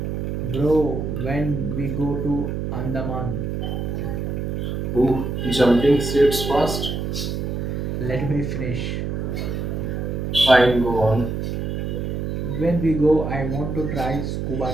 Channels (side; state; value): right; noise; hum, 2 dB below the sound